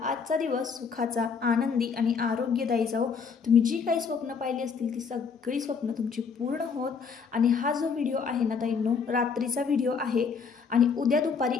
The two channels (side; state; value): right; quieter; 5.7 dB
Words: आजचा दिवस सुखाचा, आनंदी आणि आरोग्यदायी जाओ। तुम्ही जी काही स्वप्न पाहिली असतील ती सगळी स्वप्न तुमची पूर्ण होत। आणि हा जो व्हिडिओ आहे ना ताईंनो, रात्रीचा व्हिडिओ आहे आणि उद्या दुपारी